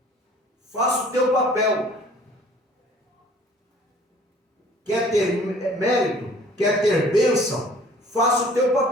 Faça o teu papel. quer ter mérito, quer ter bênção, faça o teu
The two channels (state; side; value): normal; both; correlation 0.53